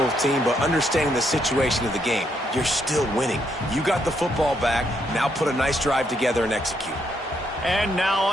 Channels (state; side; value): normal; both; correlation 0.75